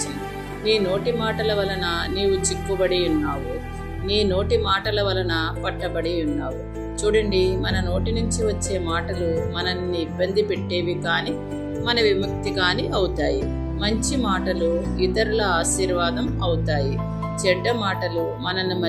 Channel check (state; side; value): identical; both; correlation 1.00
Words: నీ నోటి మాటల వలన నీవు చిక్కుబడి ఉన్నావు, నీ నోటి మాటల వలన పట్టబడి ఉన్నావు. చూడండి, మన నోటి నుంచి వచ్చే మాటలు మనల్ని ఇబ్బంది పెట్టేవి కానీ మన విముక్తి కానీ అవుతాయి. మంచి మాటలు ఇతరుల ఆశీర్వాదం అవుతాయి. చెడ్డ మాటలు మనల్ని